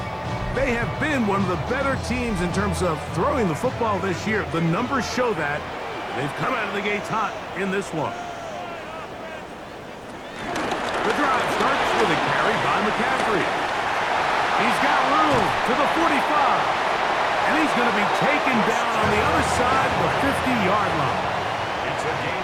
They have been one of the better teams in terms of throwing the football this year. The numbers show that. They've come out of the gates hot in this one. The drive starts with a carry by McCaffrey. He's got room to the 45. And he's going to be taken down on the other side of the 50-yard line. It's a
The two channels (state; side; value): identical; both; correlation 1.00